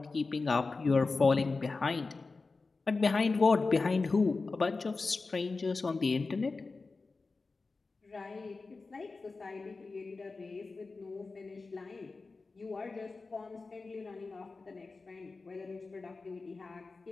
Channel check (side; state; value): right; quieter; 3.9 dB